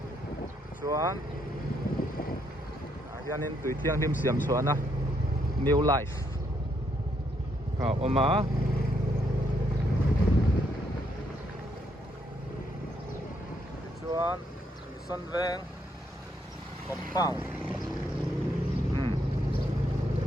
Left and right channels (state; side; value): normal; both; correlation 0.74